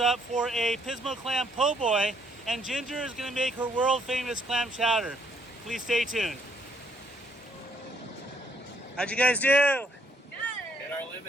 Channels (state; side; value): normal; both; correlation 0.69